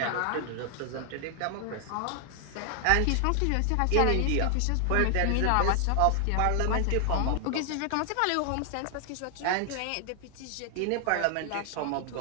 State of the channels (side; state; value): both; different; correlation 0.00